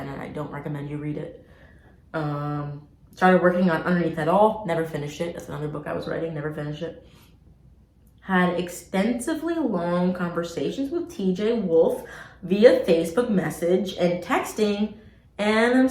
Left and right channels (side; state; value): both; identical; correlation 1.00